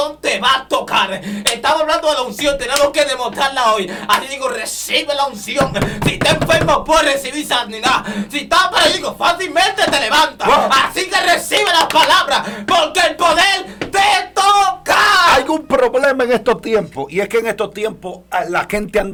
te va a tocar. Estamos hablando de la unción, tenemos que demostrarla hoy. Así digo, recibe la unción. Si estás enfermo, puedes recibir sanidad. Si estás paralítico, fácilmente te levantas. Wow. Así que recibe las palabras, porque el poder te toca. Hay un problema en estos tiempos, y es que en estos tiempos la gente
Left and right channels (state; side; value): identical; both; correlation 1.00